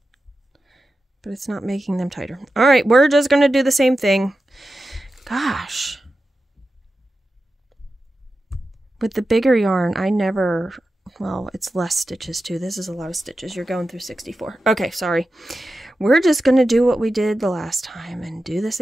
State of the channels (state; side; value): normal; both; correlation 0.92